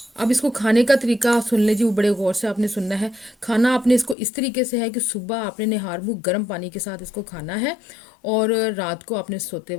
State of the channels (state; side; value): drops out; right; at 4.2 s